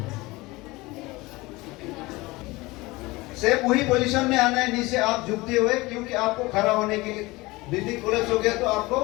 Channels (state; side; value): quieter; right; 21.7 dB